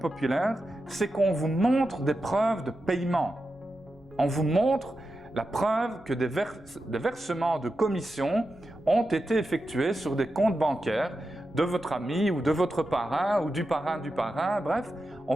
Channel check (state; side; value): normal; both; correlation 0.90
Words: c'est qu'on vous montre des preuves de paiement. On vous montre la preuve que des versements de commission ont été effectués sur des comptes bancaires de votre ami ou de votre parrain ou du parrain, bref, on